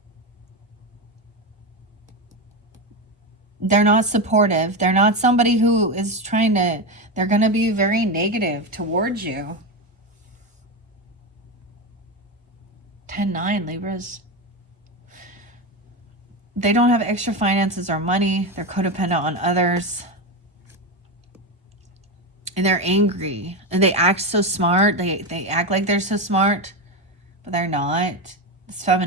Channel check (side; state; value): both; normal; correlation 0.15